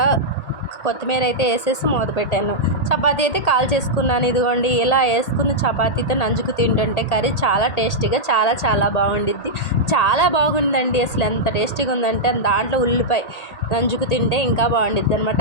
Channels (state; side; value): late; right; 1.8 ms